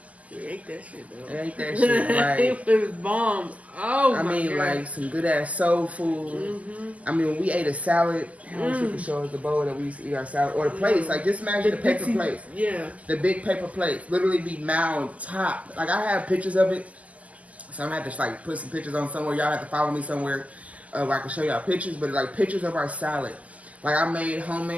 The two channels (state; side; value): late; left; 0.072 ms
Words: You ate that shit though. I ate that shit. Like it was bomb. Oh I mean, God. like some good ass soul food. I mean, when we ate a salad, I wish you could show us the bowl that we used to eat our salad, or the plates. Like just imagine the paper plates. Yeah. The big paper plates, literally be mound top. Like I have pictures of it, so I'm gonna have to just like put some pictures on somewhere. Y'all have to follow me somewhere where I can show y'all pictures. But like pictures of our salad. Like I made